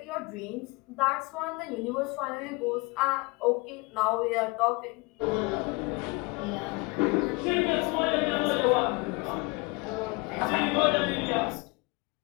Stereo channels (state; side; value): quieter; right; 27.2 dB